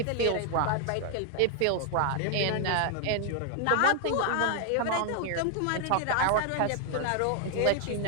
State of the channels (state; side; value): different; both; correlation 0.00